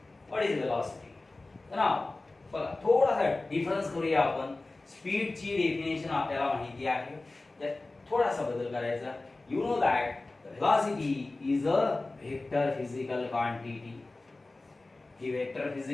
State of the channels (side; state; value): right; quieter; 3.1 dB